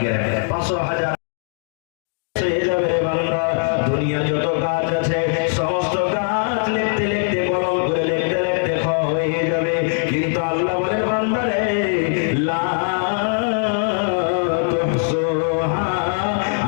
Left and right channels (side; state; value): right; silent; digital silence